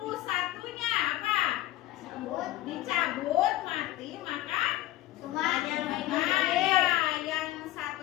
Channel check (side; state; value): right; quieter; 15.6 dB